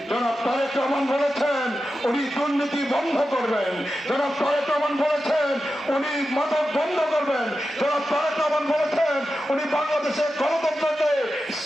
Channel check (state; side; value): normal; both; correlation 0.91